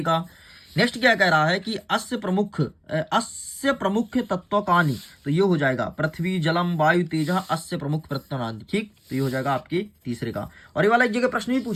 का। नेक्स्ट क्या कह रहा है कि अस्य प्रमुख तत्वकानि, तो ये हो जाएगा पृथ्वी जलम वायु तेज अस्य प्रमुख तत्वकानि, ठीक। तो ये हो जाएगा आपके तीसरे का। और ये वाला एक जगह प्रश्न भी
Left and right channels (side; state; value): both; identical; correlation 1.00